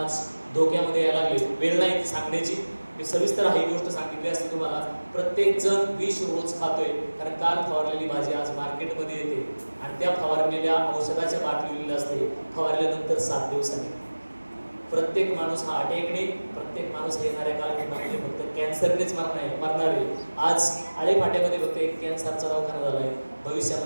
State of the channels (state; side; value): inverted; both; correlation -1.00